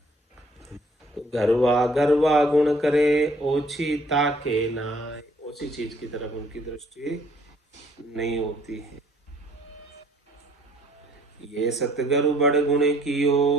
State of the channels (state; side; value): normal; both; correlation 0.61